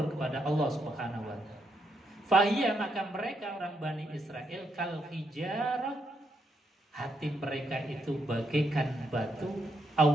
kepada Allah Subhanahu wa Ta'ala. Fahiyah, maka mereka orang Bani Israel kal hijarah, hati mereka itu bagaikan batu,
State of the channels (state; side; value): normal; both; correlation 0.78